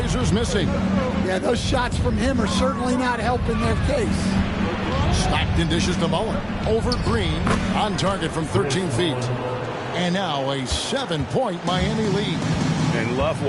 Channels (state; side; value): identical; both; correlation 1.00